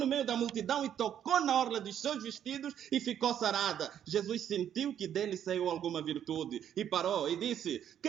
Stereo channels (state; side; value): quieter; left; 9.8 dB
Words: meio da multidão e tocou na orla dos seus vestidos e ficou sarada. Jesus sentiu que dele saiu alguma virtude e parou e disse,